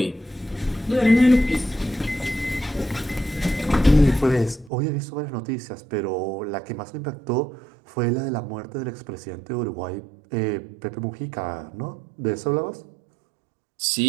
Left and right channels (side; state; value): left; drops out; at 4.7 s